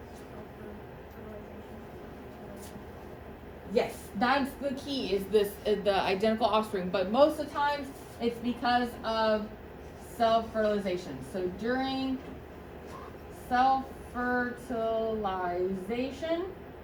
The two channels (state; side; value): identical; both; correlation 1.00